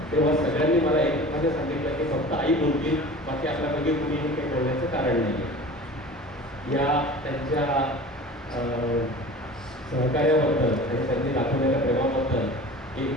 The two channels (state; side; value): normal; both; correlation 0.39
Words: तेव्हा सगळ्यांनी मला एकमेकांनी सांगितलं की फक्त आई बोलतील, बाकी आपल्यापैकी कुणीही काही बोलण्याचं कारण नाही. या त्यांच्या सहकार्याबद्दल आणि त्यांनी दाखवलेल्या प्रेमाबद्दल